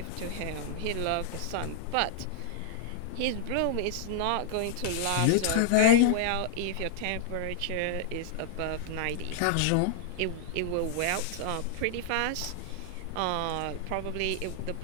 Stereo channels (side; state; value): both; different; correlation -0.01